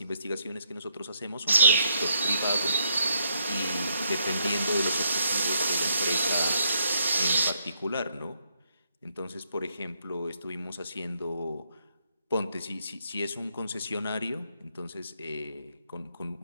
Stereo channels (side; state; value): both; inverted; correlation -0.75